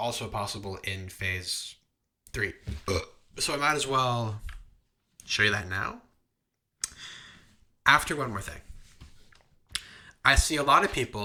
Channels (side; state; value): both; identical; correlation 1.00